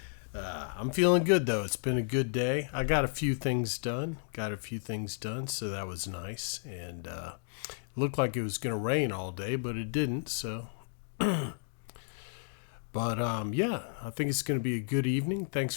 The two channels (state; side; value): silent; right; digital silence